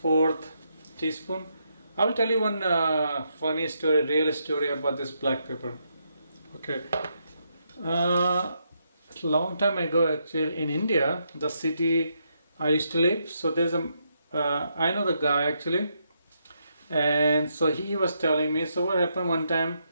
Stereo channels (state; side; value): inverted; both; correlation -0.79